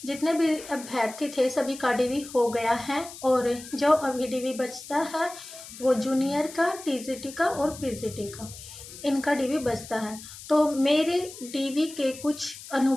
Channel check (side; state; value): left; noise; hiss, 15 dB below the sound